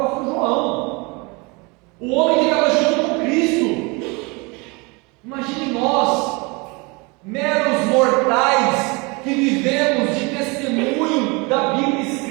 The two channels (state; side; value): quieter; left; 28.0 dB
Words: João, o homem que estava junto com Cristo. Imagine nós, meros mortais, que vivemos de testemunho da Bíblia